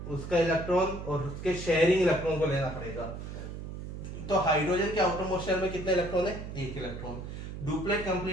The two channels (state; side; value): noise; right; hum, 8 dB below the sound